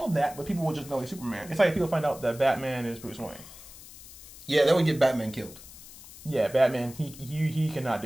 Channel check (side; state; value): left; noise; hiss, 17 dB below the sound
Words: that, but people will just know he's Superman. It's like people find out that Batman is Bruce Wayne. Yeah, that would get Batman killed. Yeah, Batman, he cannot